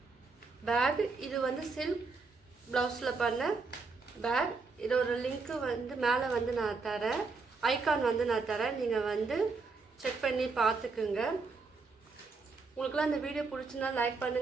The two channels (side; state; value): left; quieter; 4.3 dB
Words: பேக், இது வந்து சில்க் ப்ளவுஸில் பண்ண பேக். இதோட லிங்க்கு வந்து மேலே வந்து நான் தரேன், ஐகான் வந்து நான் தரேன், நீங்கள் வந்து செக் பண்ணி பார்த்துக்குங்க. உங்களுக்குலாம் இந்த வீடியோ பிடிச்சிருந்தா லைக்